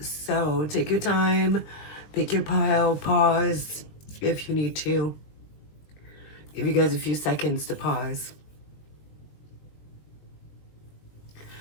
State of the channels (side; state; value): right; late; 20 ms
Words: So take your time, pick your pile, pause if you need to. Give you guys a few seconds to pause.